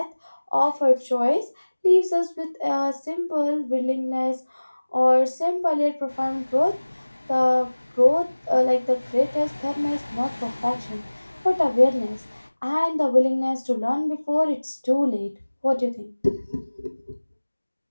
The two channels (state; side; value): inverted; both; correlation -1.00